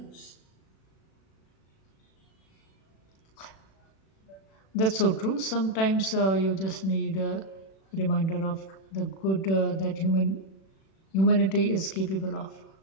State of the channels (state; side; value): late; right; 36 ms